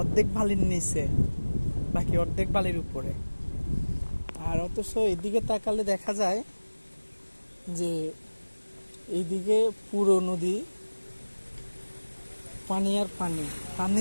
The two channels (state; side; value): inverted; both; correlation -1.00